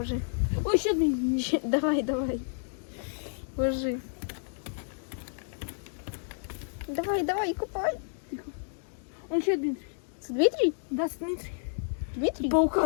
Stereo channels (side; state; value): right; silent; digital silence